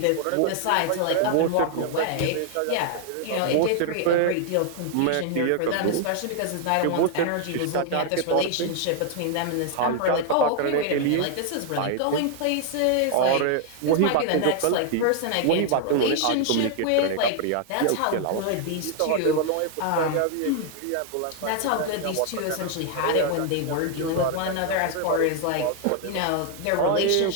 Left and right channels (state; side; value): different; both; correlation 0.00